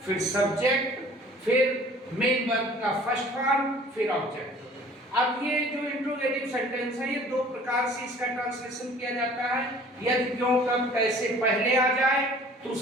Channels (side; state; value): both; normal; correlation 0.50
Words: फिर सब्जेक्ट, फिर मेन वर्ब का फर्स्ट फॉर्म, फिर ऑब्जेक्ट। अब ये जो इंट्रोगेटिव सेंटेंस है, ये दो प्रकार से इसका ट्रांसलेशन किया जाता है। यदि क्यों, कब, कैसे पहले आ जाए तो